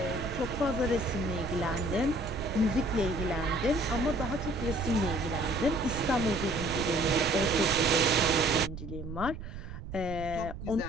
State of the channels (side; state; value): right; noise; rumble, 10 dB below the sound